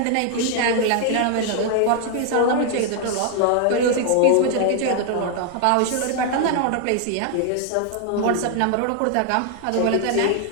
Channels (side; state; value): both; different; correlation 0.00